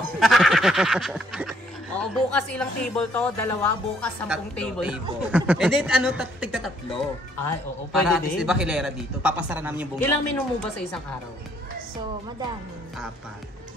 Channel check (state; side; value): normal; both; correlation 0.66